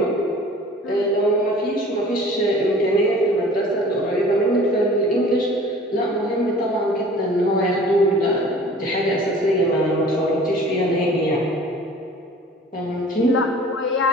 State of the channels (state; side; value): normal; both; correlation 0.46